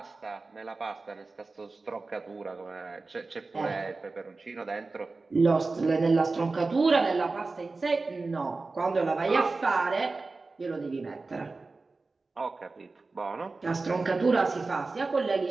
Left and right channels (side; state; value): left; quieter; 3.7 dB